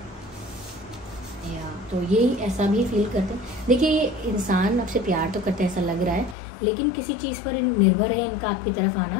या तो यही ऐसा भी फील करते हैं। देखिए ये इंसान आपसे प्यार तो करते हैं ऐसा लग रहा है, लेकिन किसी चीज़ पर निर्भर है इनका आपकी तरफ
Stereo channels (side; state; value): right; drops out; at 6.4 s